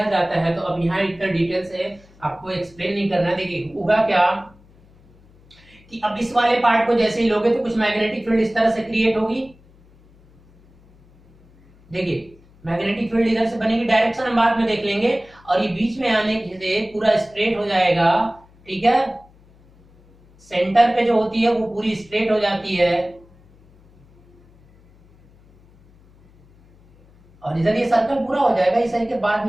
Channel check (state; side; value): noise; left; hum, 28 dB below the sound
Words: जाता है, तो अब यहाँ इतना डिटेल से आपको एक्सप्लेन नहीं करना। देखिए होगा क्या कि अब इस वाले पार्ट को जैसे ही लोगे तो कुछ मैग्नेटिक फील्ड इस तरह से क्रिएट होगी, देखिए मैग्नेटिक फील्ड इधर से बनेगी, डायरेक्शन हम बाद में देख लेंगे, और ये बीच में आने से पूरा स्ट्रेट हो जाएगा, ठीक है। सेंटर पे जो होती है वो पूरी स्ट्रेट हो जाती है, और इधर ये सर्कल पूरा हो जाएगा, इस के बाद